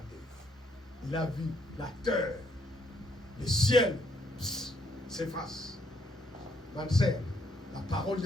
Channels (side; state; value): both; normal; correlation 0.71